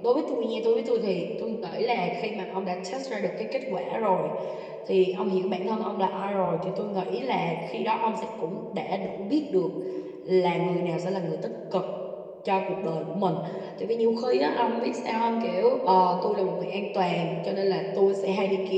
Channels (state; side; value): identical; both; correlation 1.00